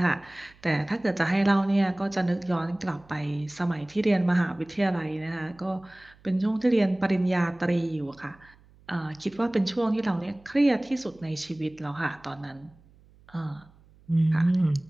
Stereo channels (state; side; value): noise; right; hum, 28 dB below the sound